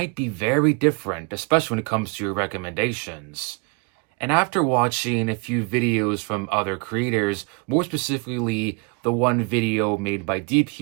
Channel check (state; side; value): quieter; left; 32.4 dB